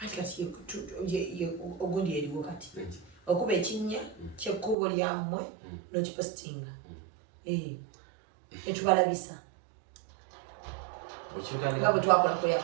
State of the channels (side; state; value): left; drops out; at 4.8 s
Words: ati kati ogundi eriwo kati okuba ekinnya kyekkubo lyammwe nokipositinga netubalabisa nga bwe twakola ku